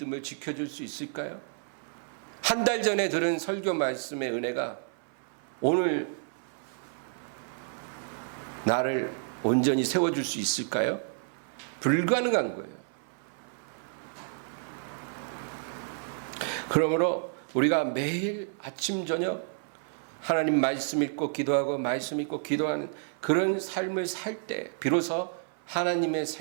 지켜줄 수 있을까요? 한 달 전에 들은 설교 말씀의 은혜가 오늘 나를 온전히 세워줄 수 있을까요? 불가능한 거예요. 그러므로 우리가 매일 아침 저녁 하나님 말씀 읽고 기도하고 말씀 읽고 기도하는 그런 삶을 살 때 비로소 하나님의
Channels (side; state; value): left; silent; 55 dB below the other